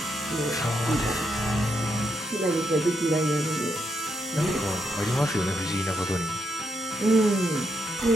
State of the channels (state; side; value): normal; both; correlation 0.81